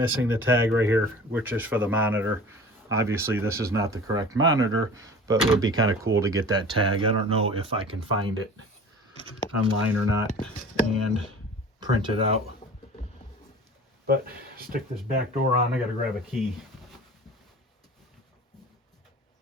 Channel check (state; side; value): normal; both; correlation 0.41